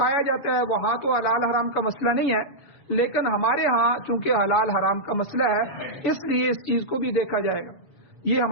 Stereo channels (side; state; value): right; late; 7.0 ms